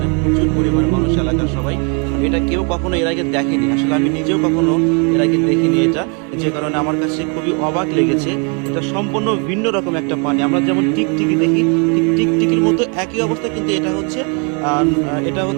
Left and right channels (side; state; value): left; quieter; 35.6 dB